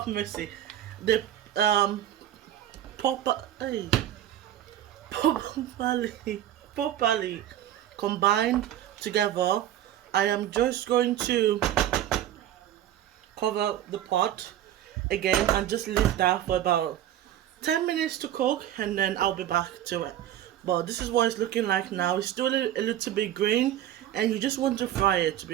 mercy, the properly combined together. I am just going to cover the pot again and just leave that for about 10 minutes to cook, and then I'll be back to it. But this is what it's looking like now. It's still a little bit green, and you just want to fry it, to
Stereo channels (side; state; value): left; quieter; 12.0 dB